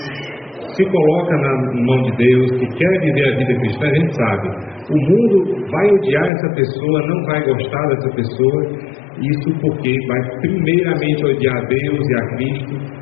se coloca na mão de Deus, que quer viver a vida cristã. A gente sabe, o mundo vai odiar essa pessoa, não vai gostar dessa pessoa, isso porque vai primeiramente odiar a Deus e a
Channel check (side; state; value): right; drops out; at 6.3 s